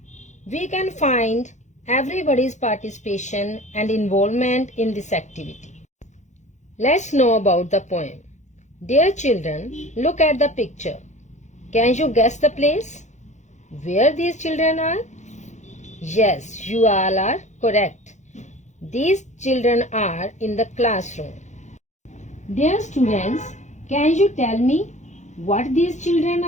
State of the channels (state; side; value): late; right; 0.34 ms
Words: we can find everybody's participation and involvement in this activity. Let's know about the poem. Dear children, look at the picture. Can you guess the place where these children are? Yes, you all are correct. These children are in the classroom. Dear students, can you tell me what these children